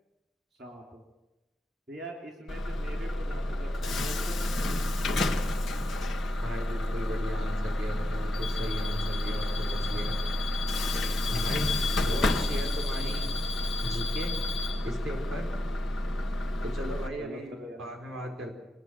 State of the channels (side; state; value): both; normal; correlation 0.85